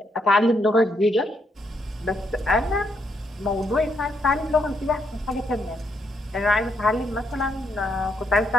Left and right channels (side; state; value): both; normal; correlation 0.76